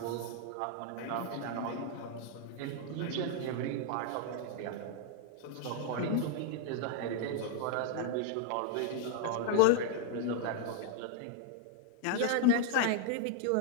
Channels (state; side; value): different; both; correlation 0.00